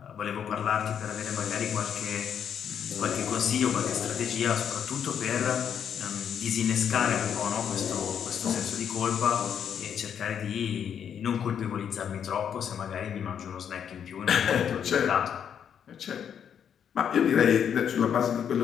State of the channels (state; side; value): quieter; right; 8.3 dB